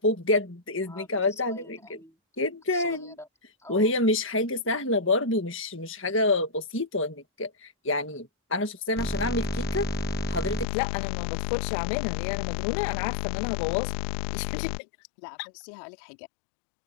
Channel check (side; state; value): right; drops out; at 10.7 s